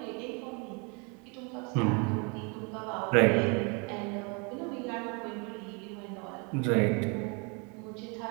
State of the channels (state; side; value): quieter; left; 32.8 dB